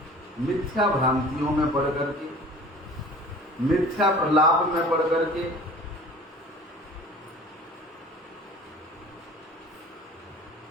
मिथ्या भ्रांतियों में पड़ करके, मिथ्या प्रलाप में पड़ करके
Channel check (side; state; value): both; normal; correlation 0.44